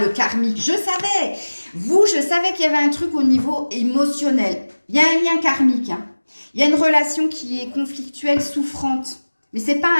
karmique, je savais. Je savais qu'il y avait un truc au niveau émotionnel. Il y a un lien karmique. Hein. Il y a une relation qui est conflictuelle, souffrante. Mais c'est pas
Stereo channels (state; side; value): inverted; both; correlation -1.00